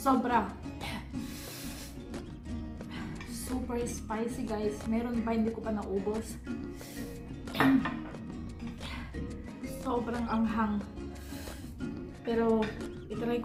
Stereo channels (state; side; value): identical; both; correlation 1.00